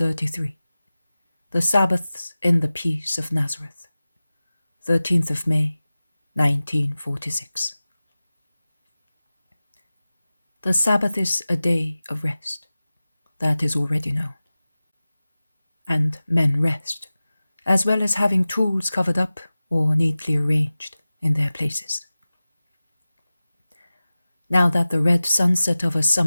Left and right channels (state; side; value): inverted; both; correlation -0.97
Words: The Sabbaths in the peace of Nazareth. 13th of May, 1946. The Sabbath is a day of rest. That is already known. And men rest, as well as having tools covered up or neatly arranged in their places. Now that the red sunset of a